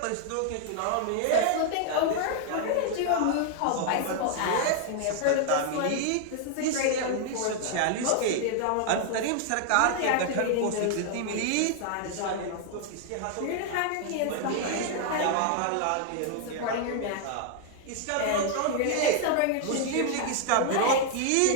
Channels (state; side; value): different; both; correlation 0.00